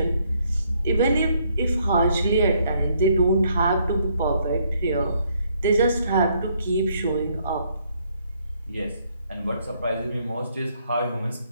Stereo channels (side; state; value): both; inverted; correlation -0.70